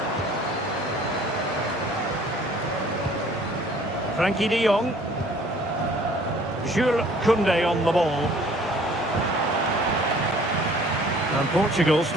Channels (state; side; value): normal; both; correlation 0.54